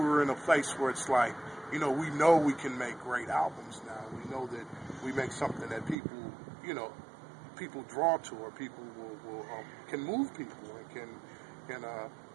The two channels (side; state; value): left; drops out; at 6.0 s